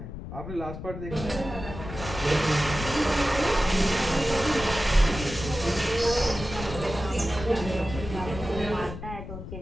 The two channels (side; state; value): left; noise; rumble, 9 dB below the sound